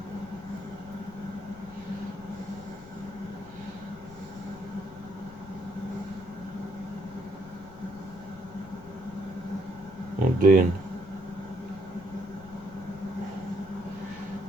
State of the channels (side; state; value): left; noise; rumble, 18 dB below the sound